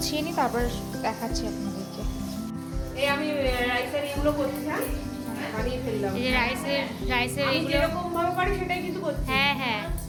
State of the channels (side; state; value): both; identical; correlation 1.00